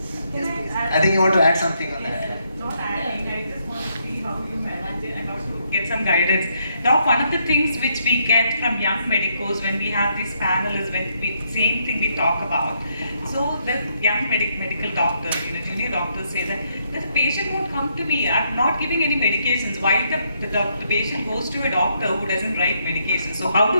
Yes, please. I think you want to add something on that. Not adding, I just want to see how you manage it and also get some guidance. Doc, one of the things which we get from young medicos when we have these panels, same thing we talk about. So the young medical doctors, junior doctors say that the patient won't come to me, I'm not giving any medications. Why the patient goes to a doctor who doesn't write medications? So how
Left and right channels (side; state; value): both; inverted; correlation -0.75